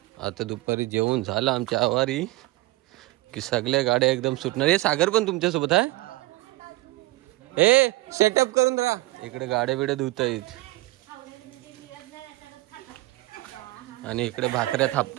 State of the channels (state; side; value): quieter; left; 19.3 dB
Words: आता दुपारी जेवण झालं आमच्या आवारी की सगळ्या गाड्या एकदम सुटणार हे सागर पण तुमच्यासोबत आहे ए सेटअप करून राहा इकडे गाड्या बिड्या धुतायत आणि इकडे भाकऱ्या